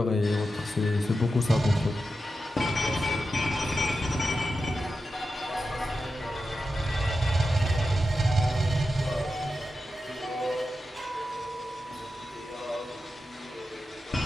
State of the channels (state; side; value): normal; both; correlation 0.90